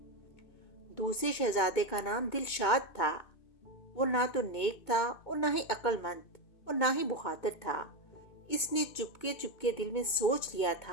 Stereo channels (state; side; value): late; right; 2.2 ms